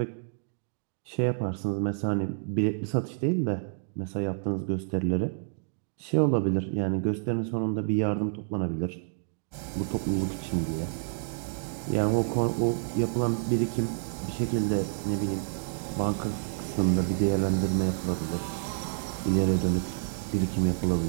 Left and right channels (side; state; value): left; silent; digital silence